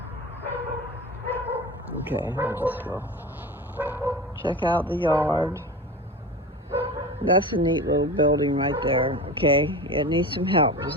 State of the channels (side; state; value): both; normal; correlation 0.30